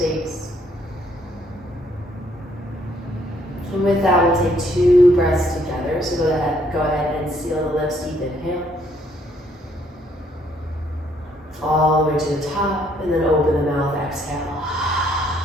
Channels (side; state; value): both; normal; correlation 0.67